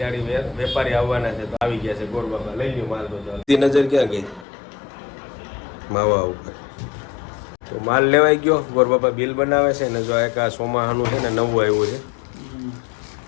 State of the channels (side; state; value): right; drops out; at 4.5 s